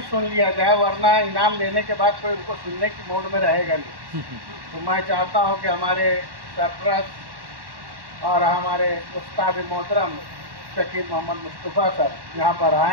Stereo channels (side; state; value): left; late; 1.1 ms